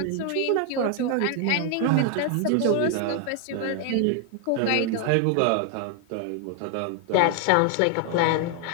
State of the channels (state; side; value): different; both; correlation 0.00